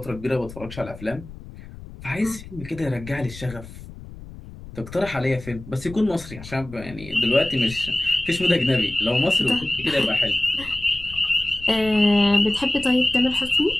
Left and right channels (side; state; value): left; noise; rumble, 15 dB below the sound